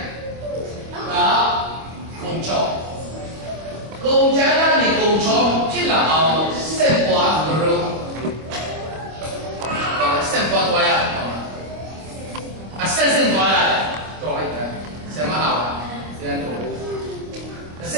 đó công cho công chén là gì công cho chỉ là ao sen quả rồi sen quả toa ya sen toa ya toa ya sen mà hảo sen toa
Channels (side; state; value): left; late; 25 ms